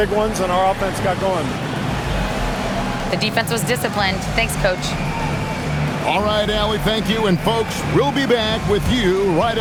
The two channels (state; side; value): identical; both; correlation 1.00